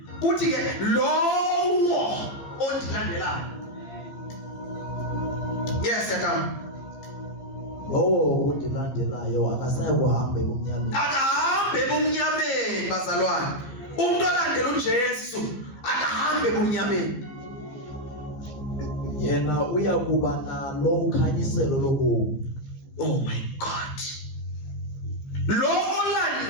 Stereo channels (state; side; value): late; right; 15 ms